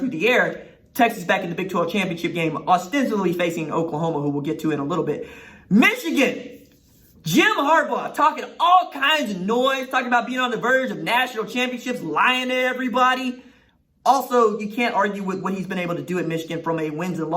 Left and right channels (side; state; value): both; identical; correlation 1.00